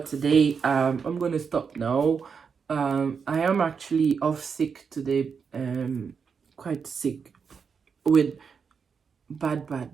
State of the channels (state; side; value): quieter; left; 6.0 dB